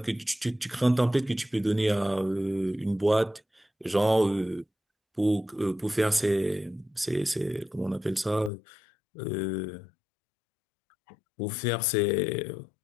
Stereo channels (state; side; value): drops out; right; at 8.5 s